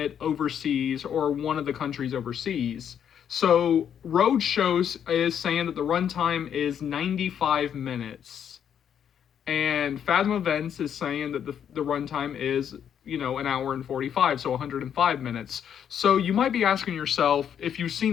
overseas or one of the countries overseas. So Roadshow is saying that the runtime is 95 minutes, and Fathom Events is saying that the runtime is an hour and 45, so 105 minutes. So you might be asking yourself, if you've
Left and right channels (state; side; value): quieter; right; 8.7 dB